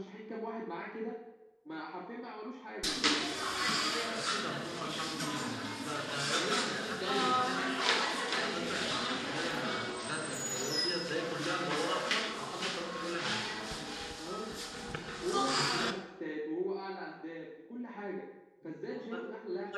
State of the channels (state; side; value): identical; both; correlation 1.00